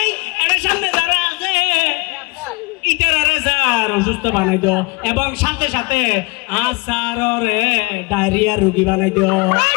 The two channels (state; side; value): quieter; right; 27.6 dB